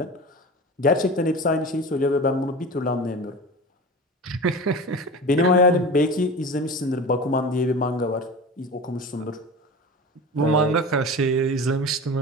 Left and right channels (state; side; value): normal; both; correlation 0.32